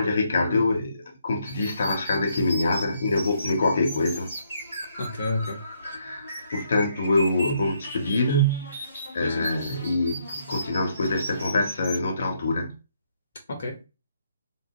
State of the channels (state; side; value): inverted; both; correlation -0.73